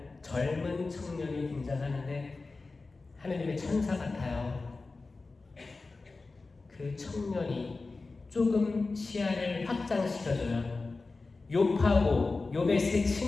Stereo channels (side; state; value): right; quieter; 3.7 dB